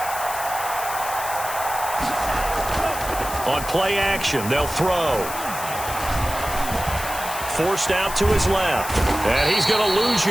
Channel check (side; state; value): left; noise; hiss, 9 dB below the sound